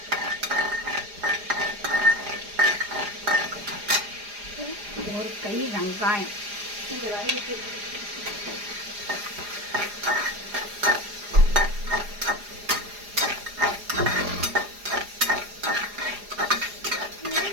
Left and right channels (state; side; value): late; left; 4.9 ms